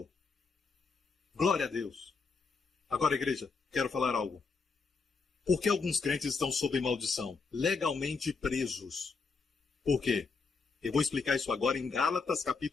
Glória a Deus. Agora, igreja, quero falar algo. Por que alguns crentes estão sob maldição? Legalmente presos. Por quê? Eu vou explicar isso agora em Gálatas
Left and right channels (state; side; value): quieter; right; 4.6 dB